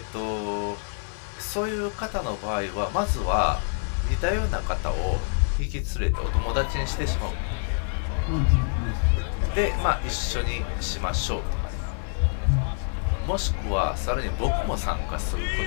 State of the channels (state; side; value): silent; right; 61 dB below the other